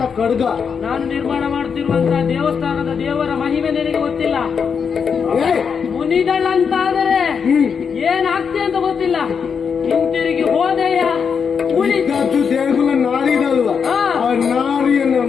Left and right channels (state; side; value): quieter; right; 6.4 dB